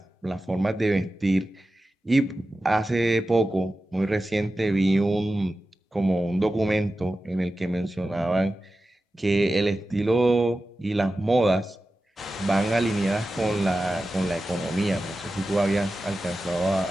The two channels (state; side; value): normal; both; correlation 0.93